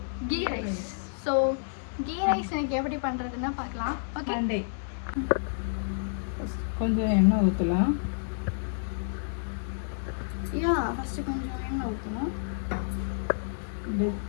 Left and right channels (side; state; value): right; silent; digital silence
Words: ghee rice. So ghee rice எனக்கு எப்படி பண்ணுறதுன்னு பார்க்கலாம். ஓகே, கொஞ்சம் எண்ணெய் ஊற்றலாம். ஃபஸ்ட்டு கொஞ்சம் எண்ணெய் ஊற்றணும்.